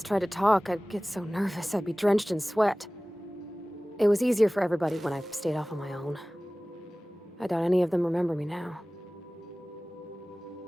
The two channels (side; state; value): both; normal; correlation 0.98